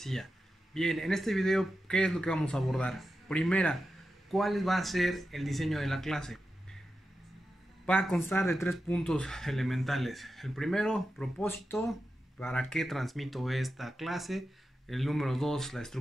Bien, en este video, ¿qué es lo que vamos a abordar? Primera, ¿cuál va a ser el diseño de la clase? Va a constar de 3 puntos elementales. El primero, propósito, para qué transmito esta clase. El número 2, la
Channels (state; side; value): normal; both; correlation 0.91